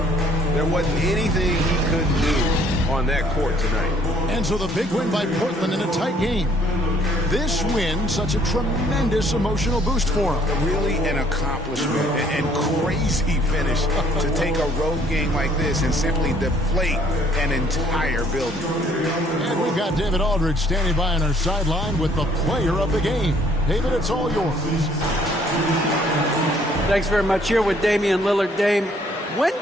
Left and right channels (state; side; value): normal; both; correlation 0.61